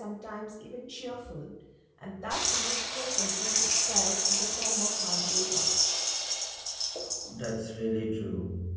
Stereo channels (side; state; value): both; identical; correlation 1.00